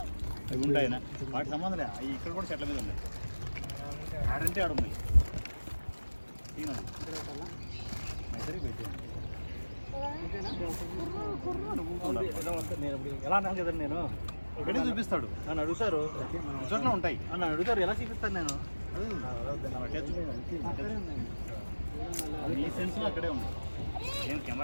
అవి ఉంటాయి వాటి సంబంధం లేదు. అవి ఇక్కడ కూడా చెట్ల మీద ఉన్నాయి. ఆడంటే ఆడున్నాయి. ఎలా అన్నాను కదా నేను ఇక్కడే చూపిస్తాడు. నన్ను అడుగుతారు చోట్ల ఉంటాయి. నన్ను అడుగుతారు ఎలా చూపిస్తాను నేను. ఈ సెన్స్ అక్కడే ఉంది. నేను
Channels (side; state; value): both; inverted; correlation -1.00